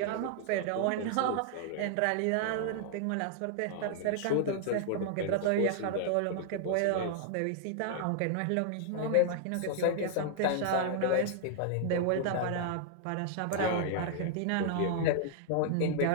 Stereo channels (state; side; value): different; both; correlation -0.01